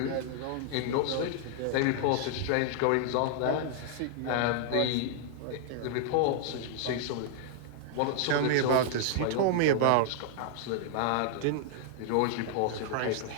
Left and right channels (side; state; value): both; different; correlation -0.01